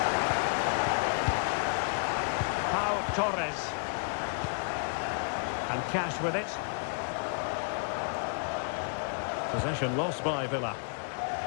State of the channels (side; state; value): right; silent; digital silence